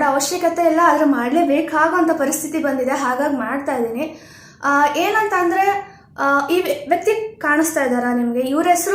ಅವಶ್ಯಕತೆ ಇಲ್ಲ, ಆದರೆ ಮಾಡಲೇಬೇಕಾಗೋಂಥ ಪರಿಸ್ಥಿತಿ ಬಂದಿದೆ, ಹಾಗಾಗಿ ಮಾಡ್ತಾಯಿದ್ದೀನಿ. ಏನಂತ ಅಂದರೆ, ಈ ವ್ಯಕ್ತಿ ಕಾಣಿಸ್ತಾ ಇದ್ದಾರಾ ನಿಮಗೆ? ಇವನ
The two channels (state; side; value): identical; both; correlation 1.00